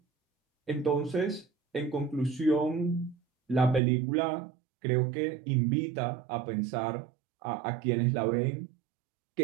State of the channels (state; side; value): drops out; left; at 3.8 s